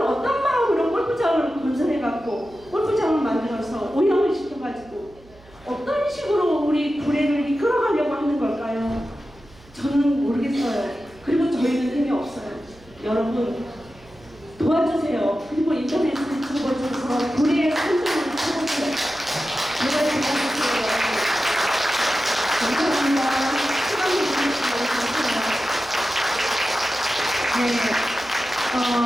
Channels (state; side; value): noise; right; hum, 26 dB below the sound